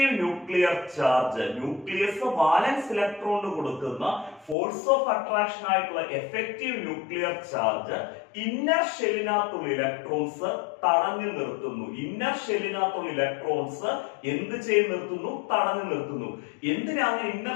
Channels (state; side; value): drops out; right; at 4.5 s